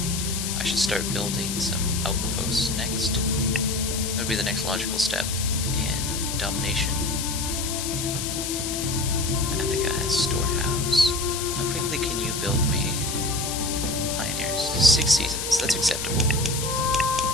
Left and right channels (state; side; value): noise; left; hiss, 4 dB below the sound